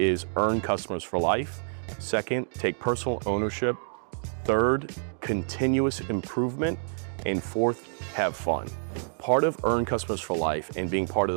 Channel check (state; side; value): silent; left; digital silence